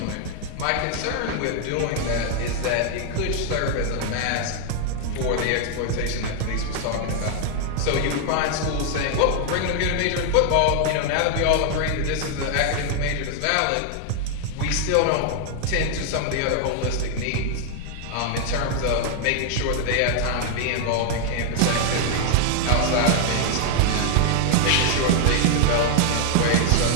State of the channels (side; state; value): both; different; correlation 0.00